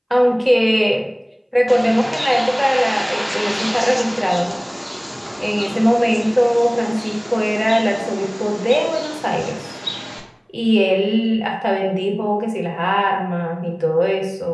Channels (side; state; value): both; identical; correlation 1.00